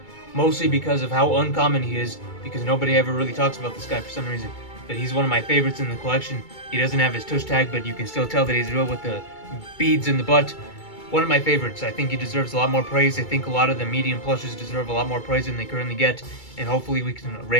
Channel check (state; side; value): late; right; 2.3 ms